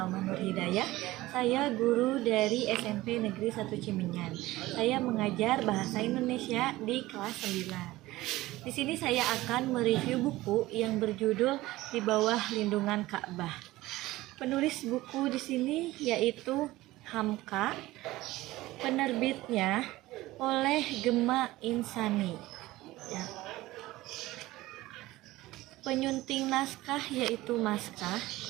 Nur Hidayah. Saya guru dari SMP Negeri 1 Cimenyan. Saya mengajar bahasa Indonesia di kelas 9. Di sini saya akan mereview buku yang berjudul Di Bawah Lindungan Ka'bah. Penulis buku di sini yaitu Hamka. Penerbitnya oleh Gema Insani. Ya. Penyunting naskah yaitu Maskah.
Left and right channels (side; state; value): left; quieter; 17.9 dB